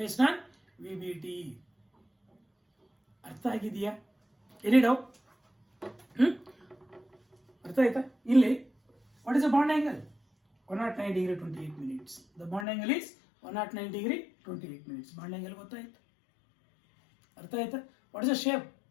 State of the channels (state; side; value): drops out; right; at 12.7 s